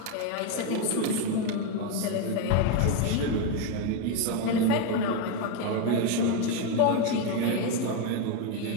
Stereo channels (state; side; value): different; both; correlation 0.02